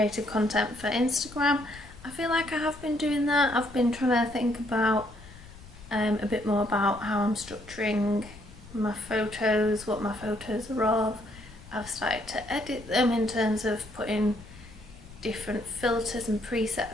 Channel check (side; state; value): left; noise; rumble, 19 dB below the sound